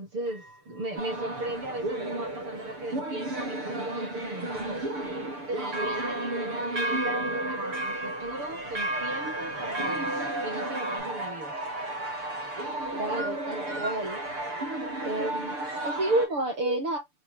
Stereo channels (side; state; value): left; late; 6.8 ms